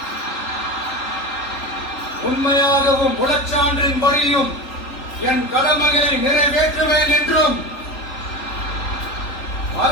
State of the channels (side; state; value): right; late; 3.7 ms